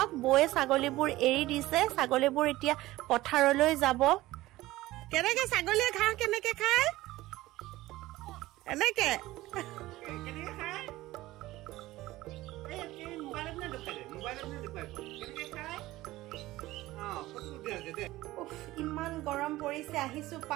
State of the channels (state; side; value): quieter; left; 17.5 dB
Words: বয়ে ছাগলীবোৰ এৰি দিছে ছাগলীবোৰ এতিয়া পথাৰলৈ যাব কেনেকে ছাগলীয়ে ঘাঁহ কেনেকে খায় এনেকে ইমান গৰম পৰিছে আহিছো